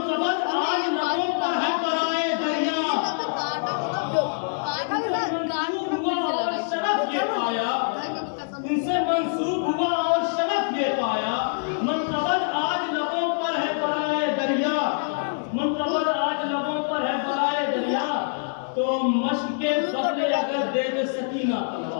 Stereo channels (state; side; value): silent; right; digital silence